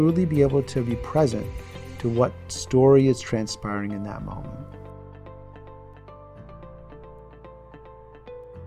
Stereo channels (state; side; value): identical; both; correlation 1.00